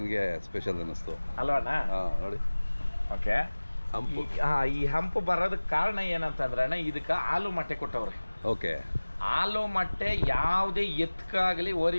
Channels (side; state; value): both; inverted; correlation -1.00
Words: ಸ್ಪೆಷಲ್ ಅನ್ನಿಸ್ತು ಅಲ್ವಾಣ? ನೋಡಿ. ಓಕೆ. ಹಂಪು. ಈ ಹಂಪು ಬರೋದಕ್ಕೆ ಕಾರಣ ಏನಂತಂದ್ರೆ ಅಣ್ಣ, ಇದಕ್ಕೆ ಹಾಲು ಮೊಟ್ಟೆ ಕೊಟ್ಟವ್ರೆ. ಓಕೆ. ಹಾಲು ಮೊಟ್ಟೆ ಯಾವುದೇ ಎತ್ಕಾಗ್ಲಿ